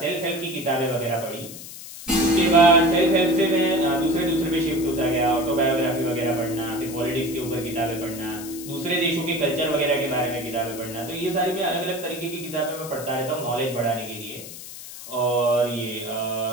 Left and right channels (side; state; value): left; noise; hiss, 13 dB below the sound